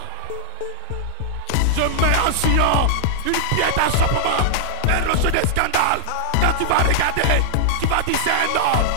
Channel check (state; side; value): different; both; correlation -0.01